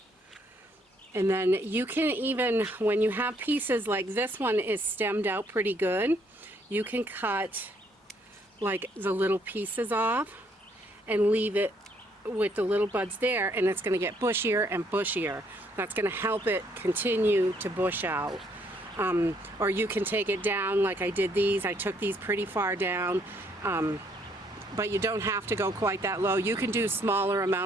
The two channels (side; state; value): both; normal; correlation 0.68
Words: And then you can even, when you have pieces like this one is stemmed out pretty good, you can cut like the little pieces off and leave it with the little buds there, and it's going to get bushier and bushier. That's going to help it continue to bush out. Or you can take it down like I did these. I took these pretty far down, but you don't have to go quite that low. You can do smaller